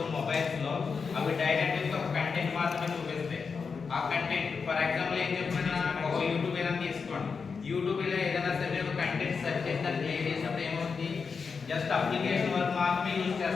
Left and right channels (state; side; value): quieter; right; 5.4 dB